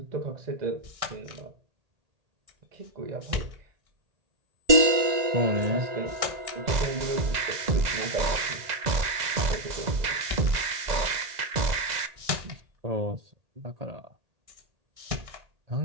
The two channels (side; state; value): left; late; 2.0 ms